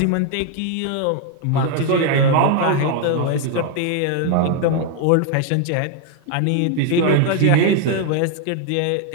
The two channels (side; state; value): both; different; correlation 0.00